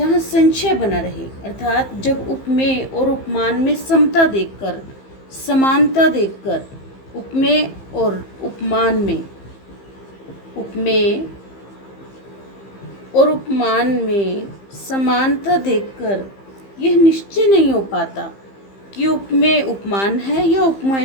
संशय बना रहे, अर्थात जब उपमेय और उपमान में समता देखकर, समानता देखकर, उपमेय और उपमान में, उपमेय और उपमान में समानता देखकर यह निश्चय नहीं हो पाता कि उपमेय उपमान है या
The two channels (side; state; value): right; late; 15 ms